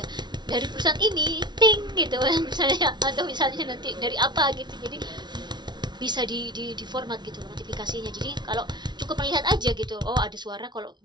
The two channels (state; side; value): late; left; 0.21 ms